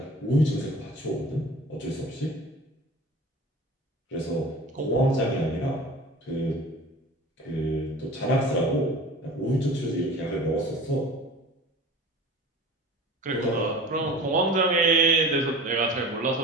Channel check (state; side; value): normal; both; correlation 0.39